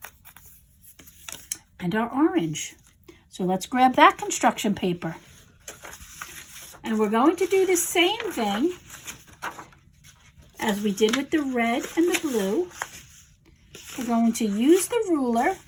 and our orange. So let's grab that construction paper. And we're going to do the same thing as we did with the red and the blue. We're going to use the ruler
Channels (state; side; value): identical; both; correlation 1.00